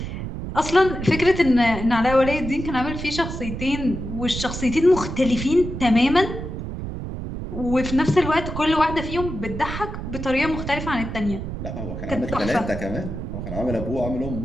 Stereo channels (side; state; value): right; noise; rumble, 7 dB below the sound